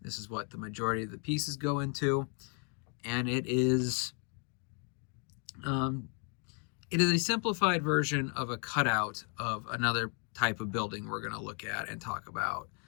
This is what the majority of the pieces go into, and it is a simplified version of a cutout of another type of building we're going to look at and talk about,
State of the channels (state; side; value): quieter; right; 39.5 dB